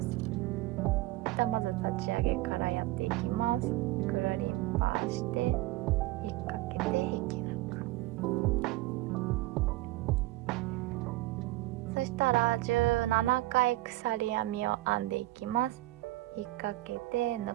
まず立ち上げからやっていきます。くるりんぱして引っ掛けて引き抜く。そしたら17回鎖編みを編んでいきます。引っ掛けて抜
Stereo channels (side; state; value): left; quieter; 18.1 dB